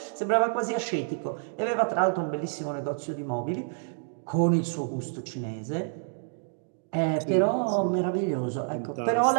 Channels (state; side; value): silent; left; digital silence